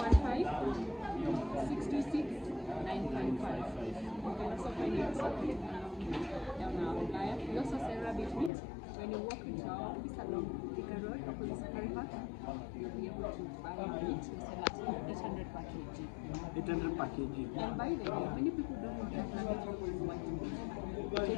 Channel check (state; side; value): drops out; right; at 8.5 s